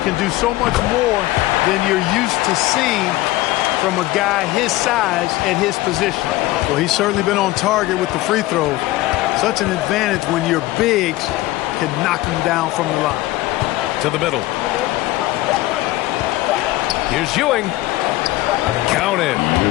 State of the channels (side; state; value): right; quieter; 17.6 dB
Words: do so much more than you're used to seeing from a guy his size at his position. Well, he's certainly been on target with the free throws. Such an advantage when your bigs can knock him down from the line. To the middle. Here's Ewing. Counted.